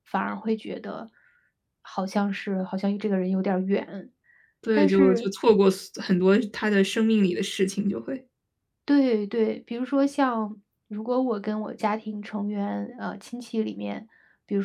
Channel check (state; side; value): identical; both; correlation 1.00